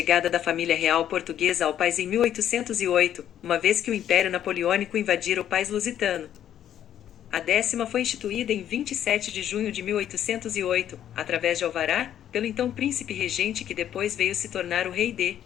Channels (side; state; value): right; quieter; 10.7 dB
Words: da família real portuguesa ao país em 1808, uma vez que o Império Napoleônico invadira o país lusitano. A 10ª foi instituída em 27 de junho de 1808, através de alvará, pelo então príncipe regente que depois veio se tornar o rei D.